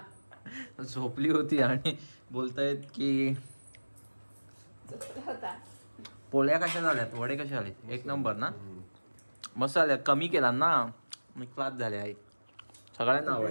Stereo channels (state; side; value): inverted; both; correlation -1.00